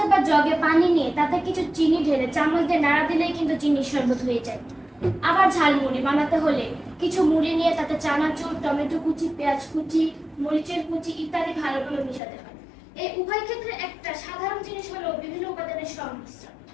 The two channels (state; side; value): drops out; right; at 12.2 s